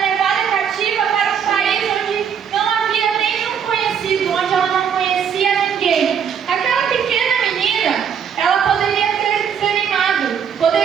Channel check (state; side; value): quieter; left; 7.7 dB